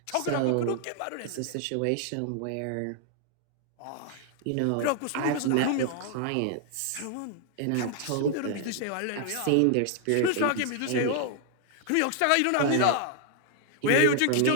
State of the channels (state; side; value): different; both; correlation 0.00